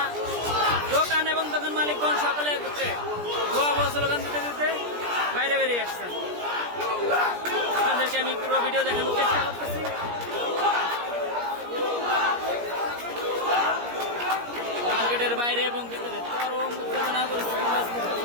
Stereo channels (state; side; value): late; left; 17 ms